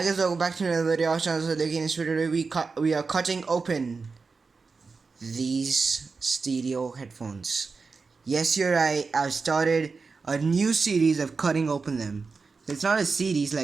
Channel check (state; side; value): quieter; left; 4.6 dB